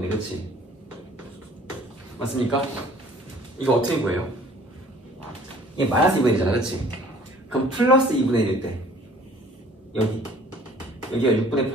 그렇지? 맞습니까? 이거 어떻게 구해요? 이게 마이너스 2분의 1이잖아, 그렇지? 그럼 플러스 2분의 1일 때 여기가 6분의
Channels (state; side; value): normal; both; correlation 0.53